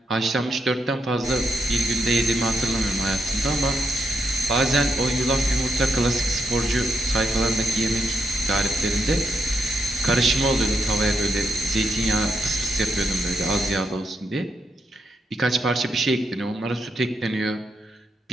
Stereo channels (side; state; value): both; normal; correlation 0.81